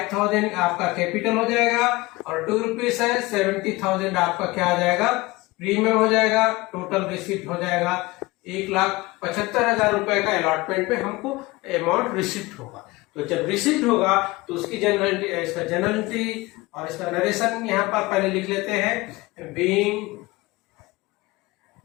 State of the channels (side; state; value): right; quieter; 21.6 dB